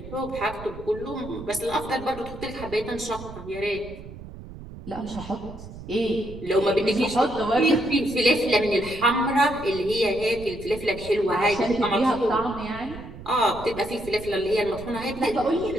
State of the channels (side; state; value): right; noise; rumble, 14 dB below the sound